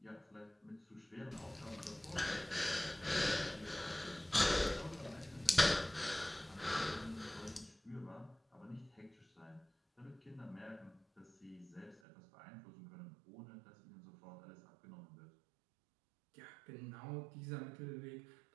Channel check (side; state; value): left; drops out; at 12.0 s